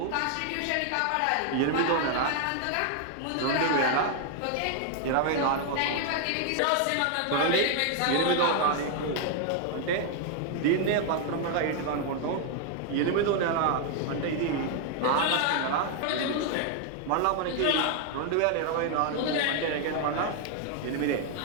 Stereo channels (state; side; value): different; both; correlation 0.00